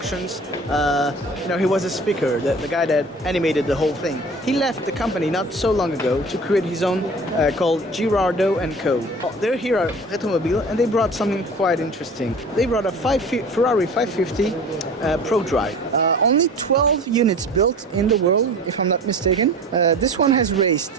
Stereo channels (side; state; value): both; normal; correlation 0.40